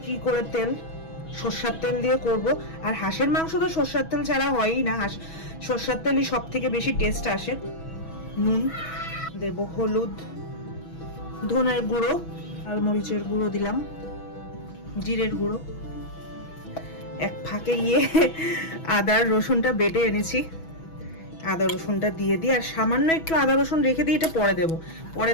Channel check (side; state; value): right; late; 6.1 ms